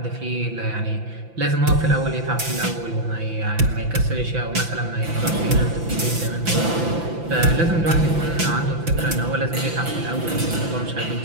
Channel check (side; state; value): left; late; 5.9 ms